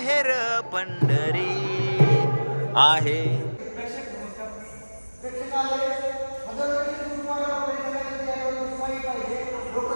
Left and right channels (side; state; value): both; inverted; correlation -1.00